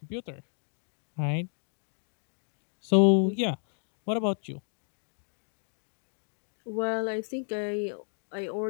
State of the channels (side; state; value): right; silent; 56 dB below the other